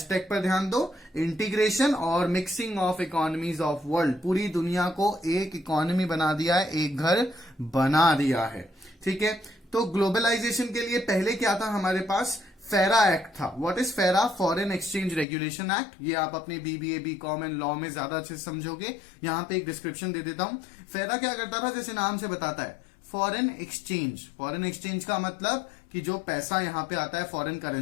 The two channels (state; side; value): drops out; right; at 15.2 s